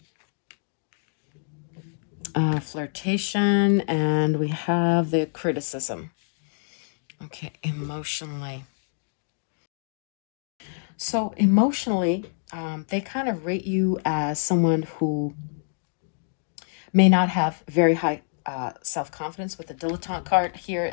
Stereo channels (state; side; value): silent; right; digital silence